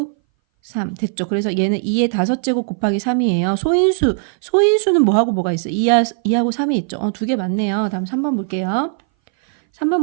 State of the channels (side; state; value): left; silent; 61 dB below the other